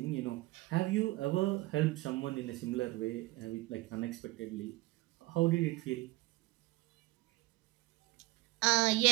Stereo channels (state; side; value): quieter; left; 20.4 dB